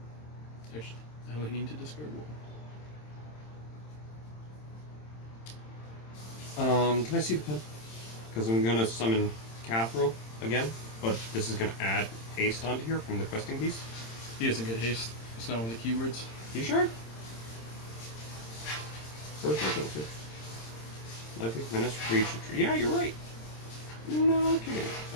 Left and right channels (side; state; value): right; late; 26 ms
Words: Actually, I only need to discard 1. Can I see the pen? Because I'm gonna summon Cathril again, but this is gonna add haste onto here from the Questing Beast. He doesn't get haste. It's not one of the keywords. You sure? First I go to. Likely menace, breach, retreat. Yeah, you're right. No kidding.